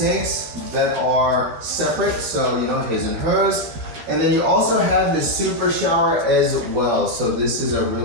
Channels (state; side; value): late; left; 12 ms